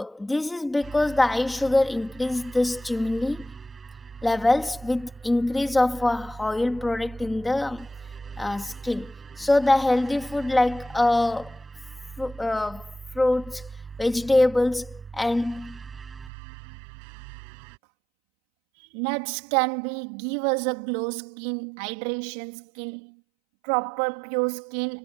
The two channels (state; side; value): drops out; left; at 16.3 s